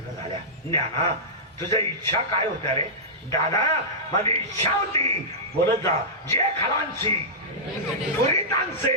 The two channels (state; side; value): normal; both; correlation -0.15